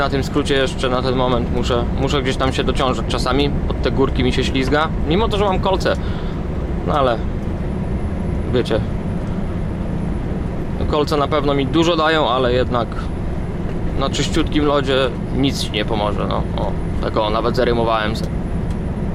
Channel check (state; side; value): identical; both; correlation 1.00